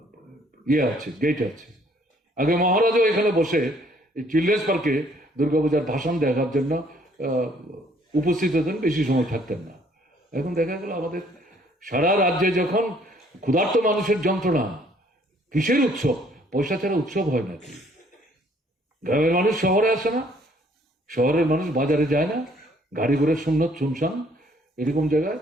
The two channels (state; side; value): normal; both; correlation 0.62